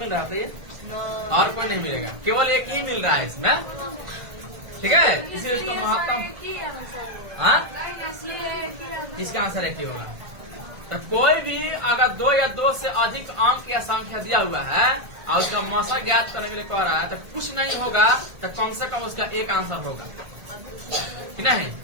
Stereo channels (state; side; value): late; left; 1.5 ms